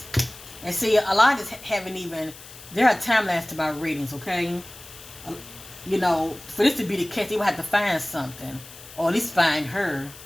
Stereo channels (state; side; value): noise; left; hiss, 17 dB below the sound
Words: And see, a lot of this haven't even, there are timelines to my readings, okay? You know, for this to be the case, they would have to find something. Or at least find her.